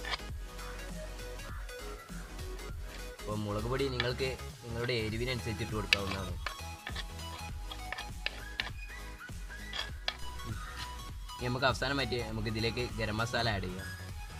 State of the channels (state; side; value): identical; both; correlation 1.00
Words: അപ്പോൾ മുളക് പൊടി നിങ്ങൾക്ക് നിങ്ങളുടെ എരിവിനനുസരിച്ച് ഇട്ട് കൊടുക്കാവുന്നതാണ്. ഇനി നമുക്ക് അവസാനമായിട്ട് നമുക്ക് ഇതിലേക്ക് ഗരം മസാല ആഡ് ചെയ്യാം.